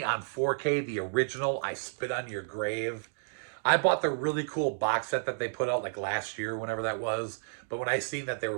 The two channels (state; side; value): silent; left; digital silence